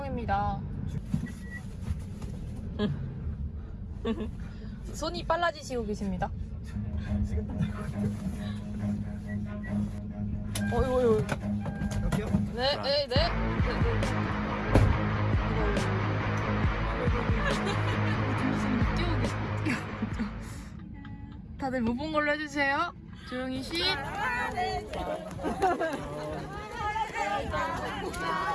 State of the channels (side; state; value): both; identical; correlation 1.00